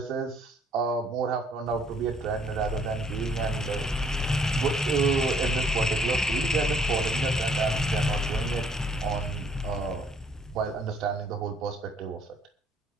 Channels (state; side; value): normal; both; correlation 0.63